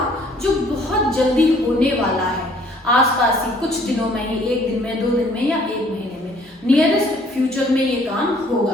जो बहुत जल्दी होने वाला है, आसपास ही कुछ दिनों में ही, एक दिन में, 2 दिन में या 1 महीने में, नियरेस्ट फ्यूचर में ये काम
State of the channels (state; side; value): normal; both; correlation 0.59